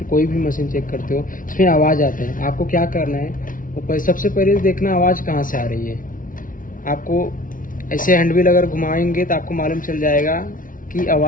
कोई भी मशीन चेक करते हो, इसमें आवाज़ आता है। आपको क्या करना है, तो सबसे पहले देखना आवाज़ कहाँ से आ रही है। आपको ऐसे हैंडविल अगर घुमाएंगे तो आपको मालूम चल जाएगा कि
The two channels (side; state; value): right; late; 0.39 ms